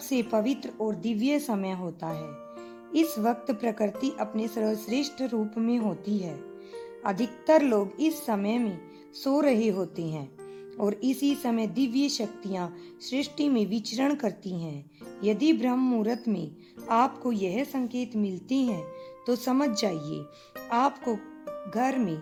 पवित्र और दिव्य समय होता है। इस वक्त प्रकृति अपने सर्वश्रेष्ठ रूप में होती है। अधिकतर लोग इस समय में सो रहे होते हैं और इसी समय दिव्य शक्तियां सृष्टि में विचरण करती हैं। यदि ब्रह्म मुहूर्त में आपको यह संकेत मिलते हैं तो समझ जाइए आपको घर में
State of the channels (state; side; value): identical; both; correlation 1.00